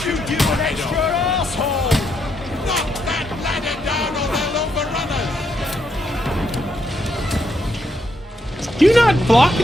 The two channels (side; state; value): both; normal; correlation 0.78